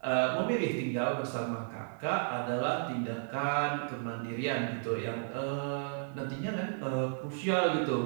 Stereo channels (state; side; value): silent; left; digital silence